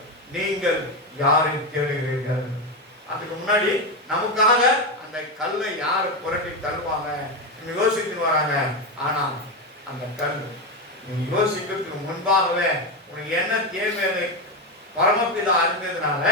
நீங்கள் யாரை தேடுகிறீர்கள்? அதுக்கு முன்னாடி நமக்காக அந்த கல்லை யாரு புரட்டி தள்ளுவாங்க யோசித்து வராங்க. ஆனா அந்த கல் நீ யோசிக்கிறதுக்கு முன்பாகவே உனக்கு என்ன தேவை பரமபிதா அறிந்ததுனால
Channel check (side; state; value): both; normal; correlation 0.13